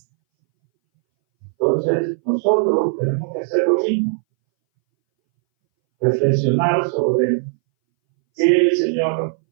Entonces, nosotros tenemos que hacer lo mismo. Reflexionar sobre qué el Señor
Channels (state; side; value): silent; left; 63 dB below the other